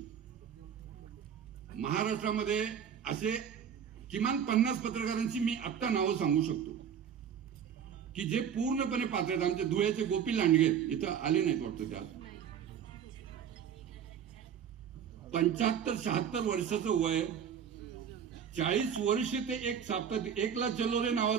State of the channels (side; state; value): left; quieter; 8.2 dB